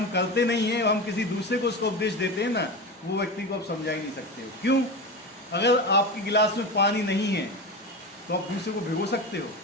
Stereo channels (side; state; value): both; normal; correlation 0.24